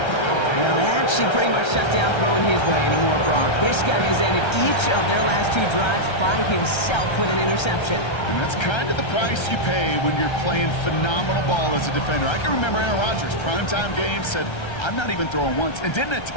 Well, that should pretty much shut down throwing his way anymore, Brock. This guy has ended each of their last 2 drives by himself with an interception. And that's kind of the price you pay when you're playing phenomenal ball as a defender. I can remember Aaron Rodgers, primetime game, said, I'm not even throwing once, and didn't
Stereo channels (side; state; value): right; late; 1.3 ms